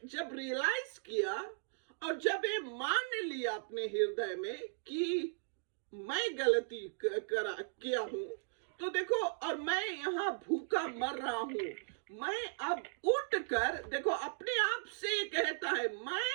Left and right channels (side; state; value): left; silent; digital silence